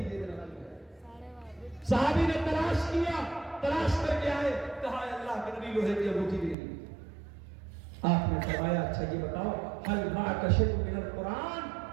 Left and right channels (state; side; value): drops out; left; at 6.6 s